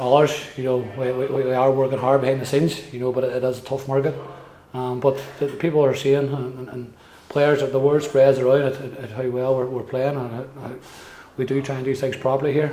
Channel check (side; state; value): both; identical; correlation 1.00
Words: We are working hard behind the scenes, but it is a tough market. But the people are seeing, and players, the word spreads around at how well we're playing, and how we do try and do things properly here.